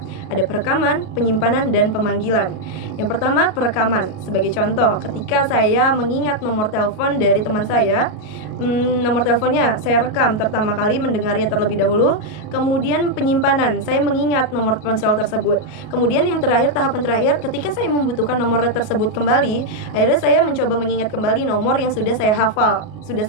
ada perekaman, penyimpanan, dan pemanggilan. Yang pertama perekaman. Sebagai contoh, ketika saya mengingat nomor telepon dari teman saya, nomor teleponnya saya rekam pertama kali mendengarnya terlebih dahulu. Kemudian penyimpanan, saya mengingat nomor ponsel tersebut. Kemudian yang terakhir, tahapan terakhir, ketika saya membutuhkan nomor tersebut kembali, akhirnya saya mencoba mengingat kembali nomor yang sudah saya hafal, sudah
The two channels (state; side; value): late; right; 38 ms